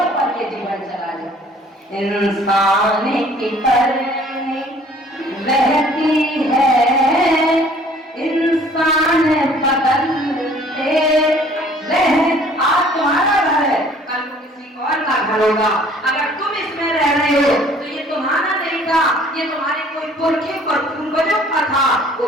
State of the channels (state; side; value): normal; both; correlation 0.55